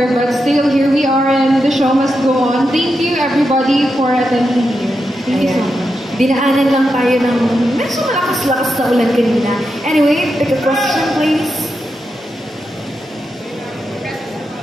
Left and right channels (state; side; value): normal; both; correlation 0.87